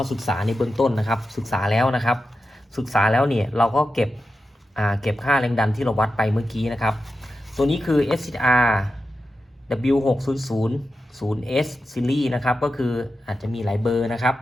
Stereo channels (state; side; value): normal; both; correlation 0.91